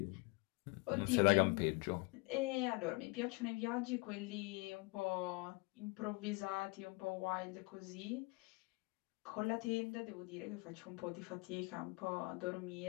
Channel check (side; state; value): right; quieter; 27.2 dB